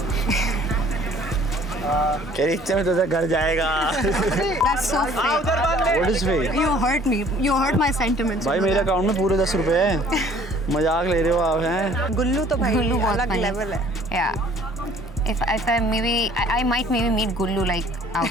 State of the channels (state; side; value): normal; both; correlation 0.55